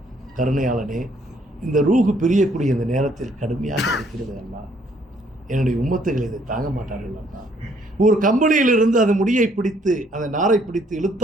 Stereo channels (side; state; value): both; normal; correlation 0.65